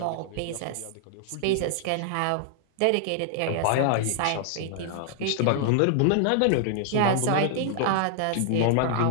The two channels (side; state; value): both; different; correlation -0.01